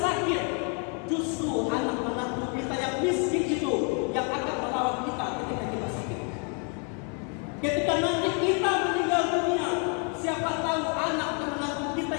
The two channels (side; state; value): right; quieter; 39.2 dB